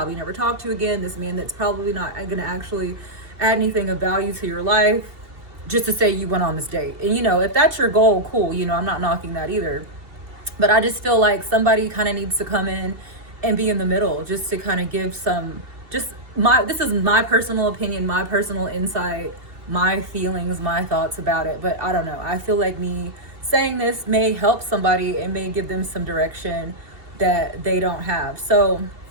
never talk to again, this man that's probably not going to actually add anything of value to your life, just to say you went on this date. And, if that's your goal, cool, I'm not knocking that either. But I just feel like somebody kind of needs to come in and be in the middle, just to kind of give some, this is my personal opinion, my personal insight, my feelings, my thoughts about it. But I don't know, I feel like me saying this may help somebody and may give them some direction that they don't have. So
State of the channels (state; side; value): late; left; 2.7 ms